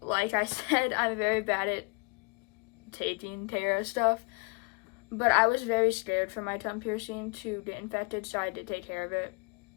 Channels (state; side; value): quieter; right; 31.8 dB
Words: I said, I'm very bad at taking care of stuff. But I was very scared for my tongue piercing to get infected, so I did take care of it.